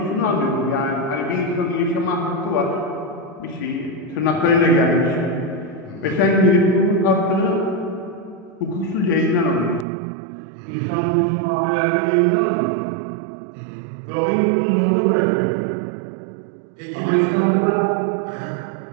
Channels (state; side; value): drops out; left; at 9.9 s